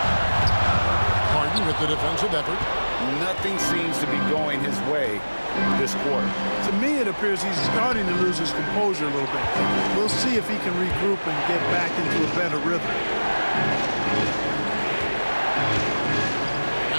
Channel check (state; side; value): inverted; both; correlation -1.00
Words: Harden with the defensive effort. Nothing seems to be going his way this quarter. To me, it appears he's starting to lose his composure a little bit. We'll see if he can regroup and get back into a better rhythm.